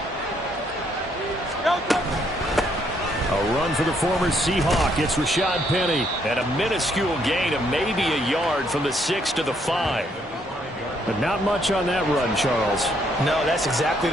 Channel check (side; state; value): both; normal; correlation 0.71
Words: A run for the former Seahawk. It's Rashad Penny. And a minuscule gain of maybe a yard from the 6 to the 5. But not much on that run, Charles. No, that's exactly